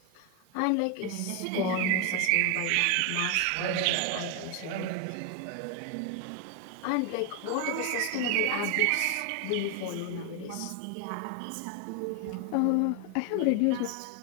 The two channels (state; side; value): different; both; correlation 0.01